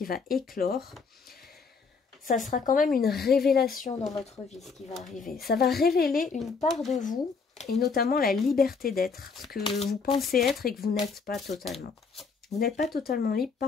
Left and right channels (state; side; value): quieter; right; 5.0 dB